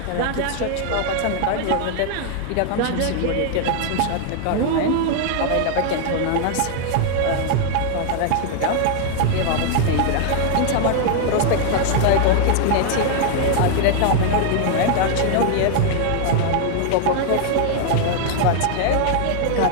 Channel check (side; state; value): both; different; correlation 0.00